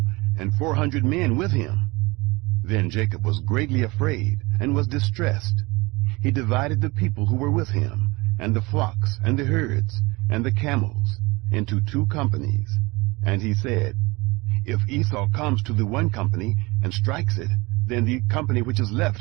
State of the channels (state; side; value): quieter; left; 23.8 dB